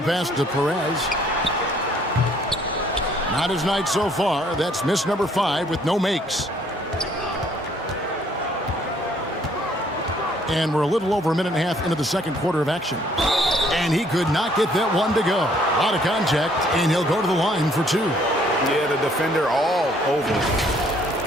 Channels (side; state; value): both; normal; correlation 0.63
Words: pass to Perez. Not his night so far. That's miss number 5 with no makes. And we're a little over a minute and a half into the second quarter of action. And he could not get that one to go. A lot of contact, and he'll go to the line for 2. Yeah, the defender all over.